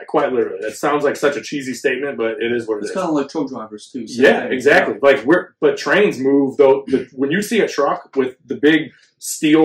quite literally. That sounds like such a cheesy statement, but it is what it is. It's kind of like truck drivers too. Yeah, exactly. But trains move though. When you see a truck with the big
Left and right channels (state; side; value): identical; both; correlation 1.00